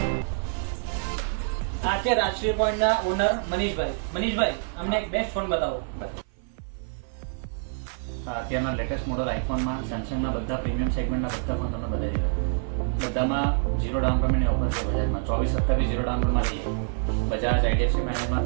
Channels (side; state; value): left; silent; 57 dB below the other